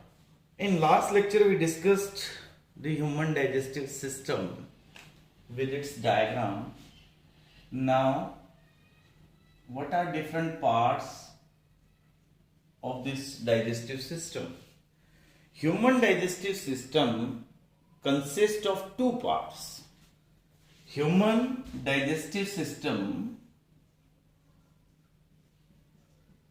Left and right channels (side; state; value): both; identical; correlation 1.00